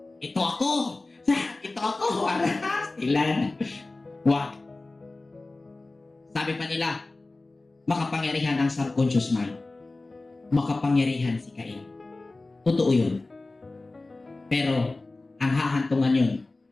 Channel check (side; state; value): right; quieter; 3.2 dB